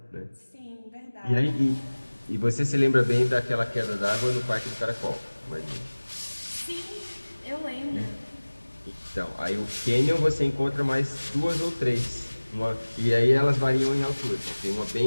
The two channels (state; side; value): inverted; both; correlation -1.00